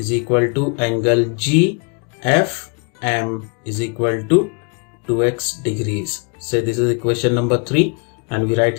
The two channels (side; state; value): right; quieter; 37.4 dB